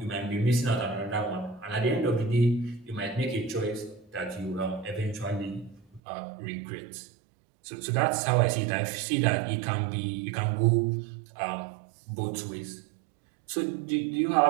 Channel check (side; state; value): left; drops out; at 6.0 s